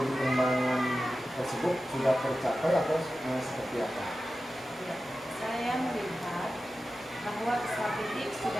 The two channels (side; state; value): both; normal; correlation 0.93